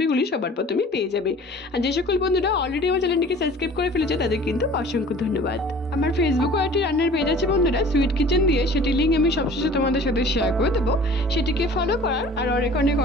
সবার প্রথমেই পেয়ে যাবে। আর যে সকল বন্ধুরা অলরেডি আমার চ্যানেলটিকে সাবস্ক্রাইব করে ফেলেছে তাদের কিন্তু অসংখ্য ধন্যবাদ। আমার ফেসবুক আর একটি রান্নার পেজ আছে বন্ধুরা সুইট কিচেন দিয়ে, সেটি লিঙ্ক আমি সবশেষে তোমাদের সাথে শেয়ার করে দেবো। সেটিকে ফলো করার আর অনেক অনেক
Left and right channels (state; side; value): normal; both; correlation 0.46